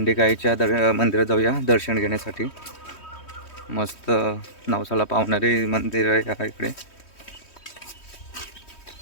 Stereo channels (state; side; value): late; right; 3.1 ms